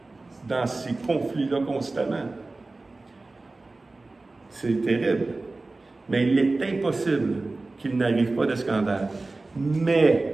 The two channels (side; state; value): left; quieter; 3.3 dB